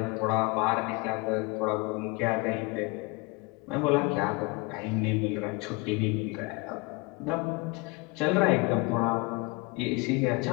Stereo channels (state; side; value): quieter; right; 25.9 dB